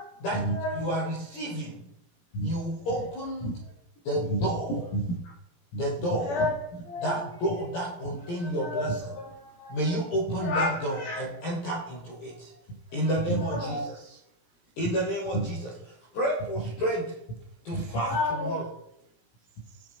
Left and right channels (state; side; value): late; right; 17 ms